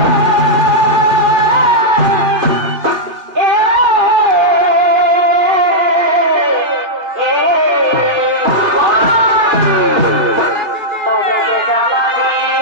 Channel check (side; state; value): left; late; 3.3 ms